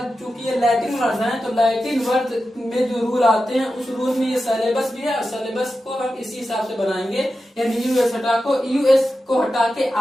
चूंकि ये लैटिन वर्ड है तो लैटिन वर्ड में जो रूल आते हैं उस रूल में ये सिलेबस भी है, और सिलेबस को हम इसी हिसाब से बनाएंगे, यानी यूएस को हटा के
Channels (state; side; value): normal; both; correlation 0.91